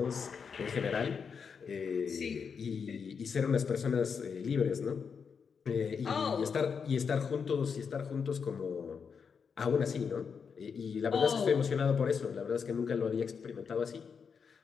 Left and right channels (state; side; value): quieter; right; 6.2 dB